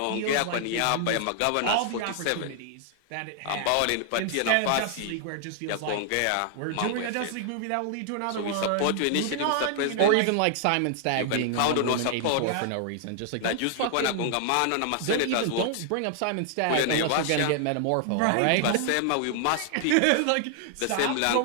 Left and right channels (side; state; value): both; different; correlation 0.00